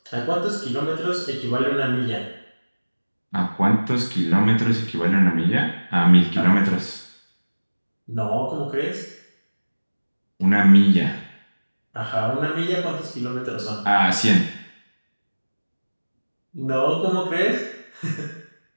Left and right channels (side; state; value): both; inverted; correlation -1.00